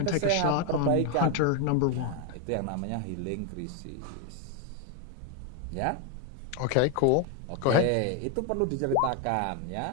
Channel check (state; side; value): different; both; correlation 0.01